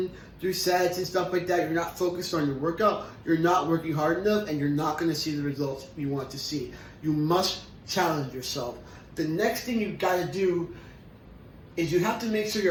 through sets and stuff like that, you're not focused on your workout, you're not working hard enough, and you're not going to see the results you want to see. You must challenge yourself. The next thing you've got to do is you have to make sure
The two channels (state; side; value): identical; both; correlation 1.00